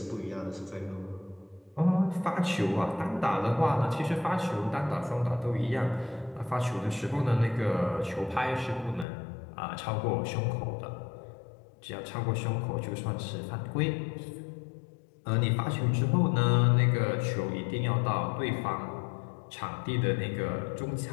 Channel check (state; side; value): drops out; right; at 9.1 s